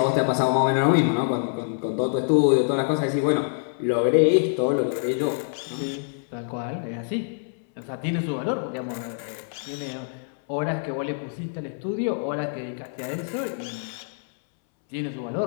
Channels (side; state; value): right; silent; 61 dB below the other